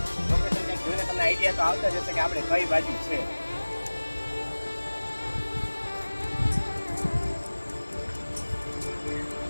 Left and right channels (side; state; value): both; inverted; correlation -1.00